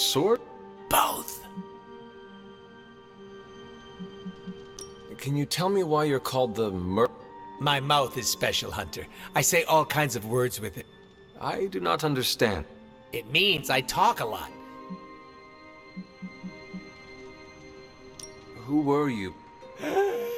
Both. Can you tell me why you're called the Merc? My mouth is special, Hunter. I say all kinds of words with it. I do not understand. It means I talk a lot. Who were you?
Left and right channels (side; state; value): both; identical; correlation 1.00